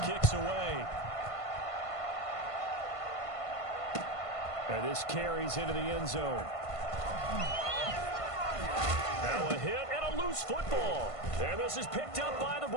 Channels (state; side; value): late; right; 1.5 ms